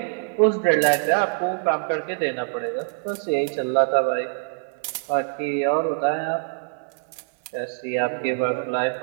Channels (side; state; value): left; silent; 62 dB below the other